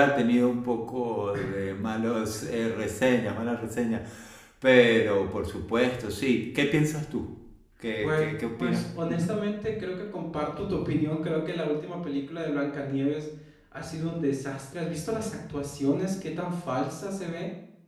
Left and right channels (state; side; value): identical; both; correlation 1.00